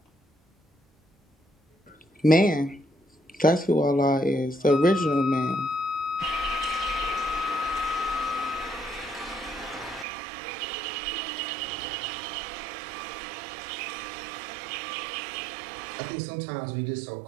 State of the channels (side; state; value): left; drops out; at 10.1 s